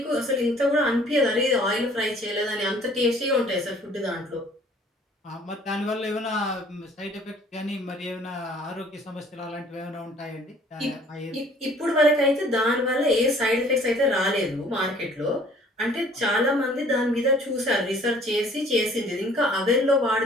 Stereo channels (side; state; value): both; normal; correlation 0.55